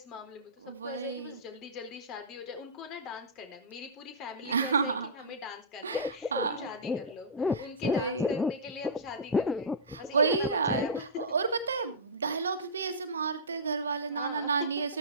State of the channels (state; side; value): normal; both; correlation -0.19